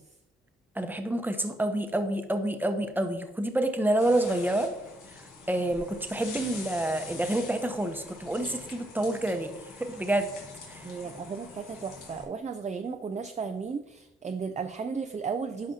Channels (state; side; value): normal; both; correlation 0.77